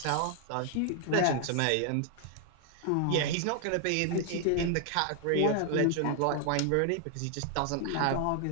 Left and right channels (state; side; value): different; both; correlation 0.00